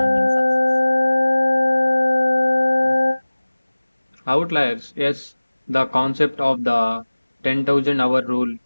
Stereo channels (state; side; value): inverted; both; correlation -1.00